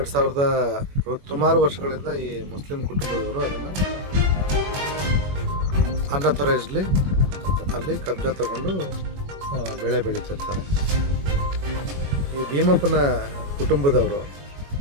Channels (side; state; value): left; late; 21 ms